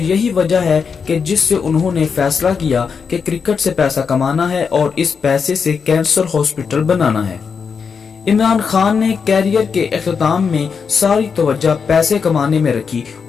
یہی وجہ ہے کہ جس سے انہوں نے فیصلہ کیا کہ کرکٹ سے پیسہ کمانا ہے اور اس پیسے سے کینسر ہاسپٹل بنانا ہے۔ عمران خان نے کیریئر کے اختتام میں ساری توجہ پیسے کمانے میں رکھی۔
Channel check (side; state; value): right; quieter; 5.9 dB